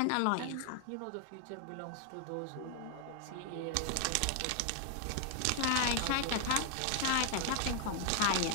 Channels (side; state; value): both; different; correlation 0.00